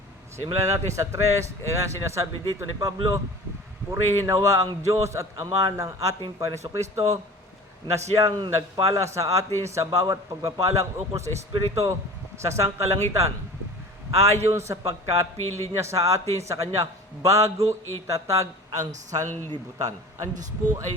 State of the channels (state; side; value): normal; both; correlation 0.40